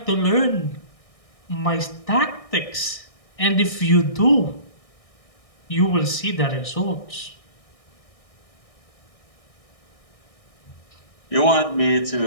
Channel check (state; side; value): late; right; 1.6 ms